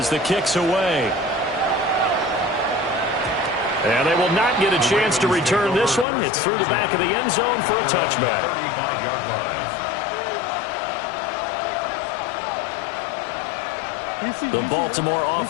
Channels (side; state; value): right; drops out; at 6.1 s